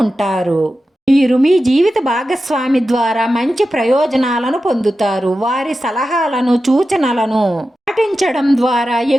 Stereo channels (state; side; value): normal; both; correlation 0.92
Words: ఉంటారు. మీరు మీ జీవిత భాగస్వామి ద్వారా మంచి ప్రయోజనాలను పొందుతారు. వారి సలహాలను, సూచనలను పాటించడం ద్వారా